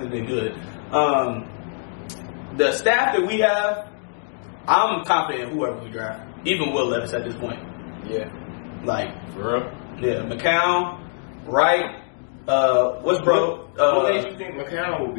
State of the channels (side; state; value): right; silent; 63 dB below the other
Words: been good, the staff that we have, I'm confident in whoever we draft, even Will Levis at this point. Yeah. For real? Yeah, McCown, Wright, what's bro? What makes you think McCown will